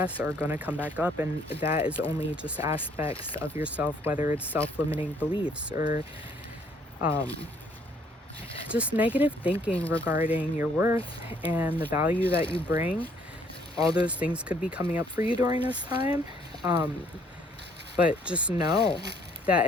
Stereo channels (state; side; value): normal; both; correlation 0.64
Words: are going to come back up, and that is only just aspects of yourself, whether it's self-limiting beliefs or just negative thinking regarding your worth and the value that you bring. All those things could be coming up for you during this time, but just know that